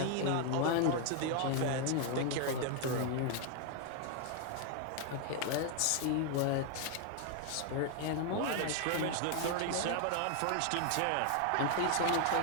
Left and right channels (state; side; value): different; both; correlation 0.00